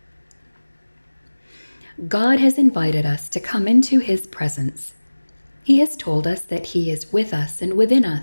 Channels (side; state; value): both; inverted; correlation -1.00